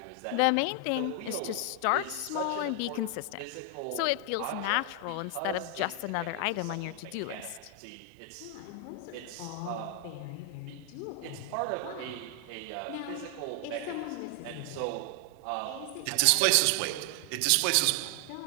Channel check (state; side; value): different; both; correlation 0.00